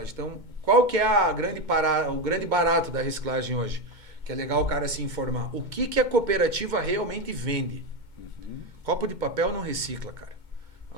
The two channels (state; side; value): late; left; 2.2 ms